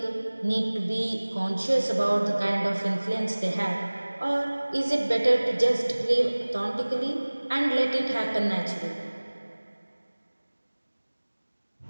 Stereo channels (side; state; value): both; inverted; correlation -1.00